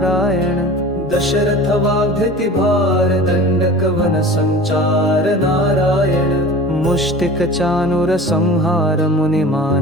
दशरथ वाग्धति भार दंडक वन संचार नारायण मुष्टिक चानुर संहार मुनि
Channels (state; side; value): normal; both; correlation 0.39